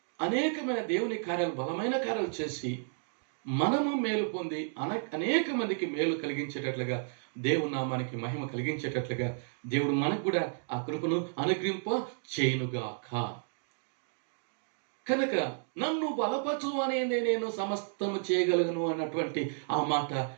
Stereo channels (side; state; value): left; silent; digital silence